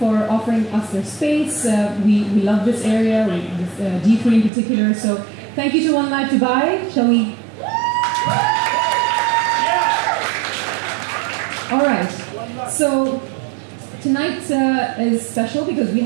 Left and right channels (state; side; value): drops out; left; at 4.5 s